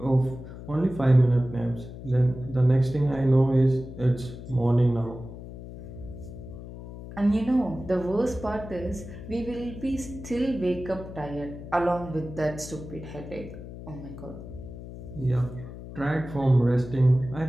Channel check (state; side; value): noise; left; hum, 12 dB below the sound